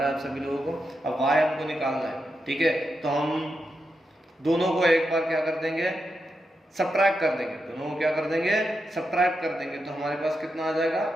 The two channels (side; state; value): both; normal; correlation 0.86